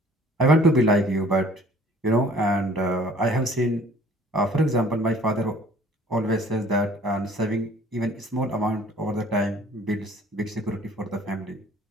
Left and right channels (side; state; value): both; normal; correlation 0.53